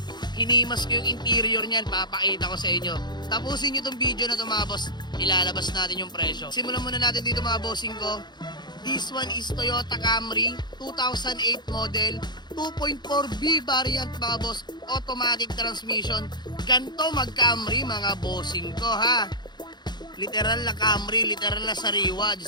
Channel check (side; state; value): right; late; 0.21 ms